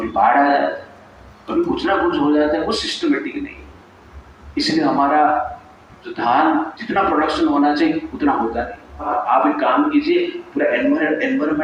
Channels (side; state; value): both; identical; correlation 1.00